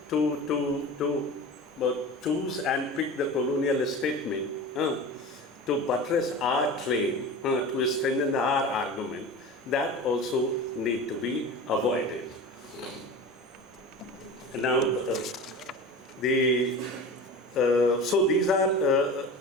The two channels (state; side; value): normal; both; correlation 0.33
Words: to choose and pick the colonial statement to buttress our claim, to strengthen our argument, that also need to be avoided. Now, so these are